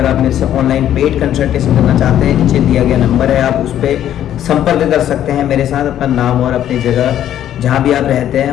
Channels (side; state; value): right; quieter; 11.2 dB